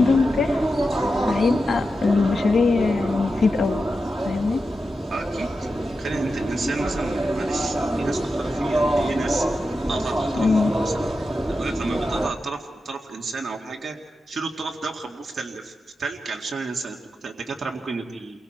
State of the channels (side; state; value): both; normal; correlation 0.90